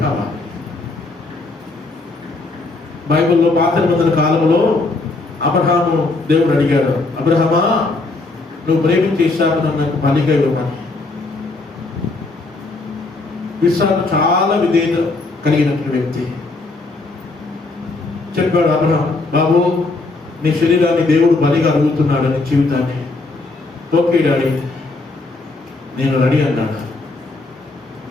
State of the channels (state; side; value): quieter; right; 3.4 dB